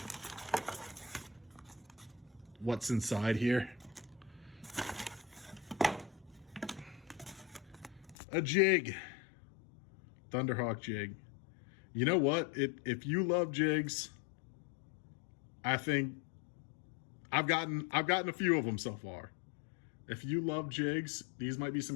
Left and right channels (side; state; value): right; drops out; at 8.2 s